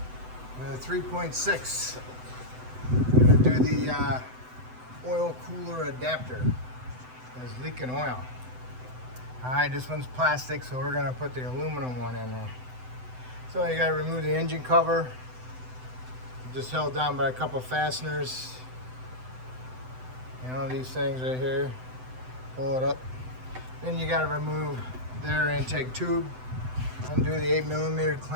with a 3.6. I'm going to do the oil cooler adapter. It's leaking oil. Alright, this one's plastic, so we're going to put the aluminum one in there. So you got to remove the engine cover. Just held down by a couple fasteners. You know, these things right here. Pull it up. Then you got to remove the air intake tube. Undo the 8mm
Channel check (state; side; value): late; left; 7.9 ms